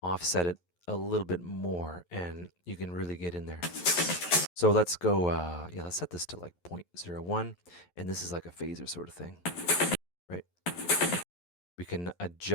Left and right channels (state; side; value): late; right; 11 ms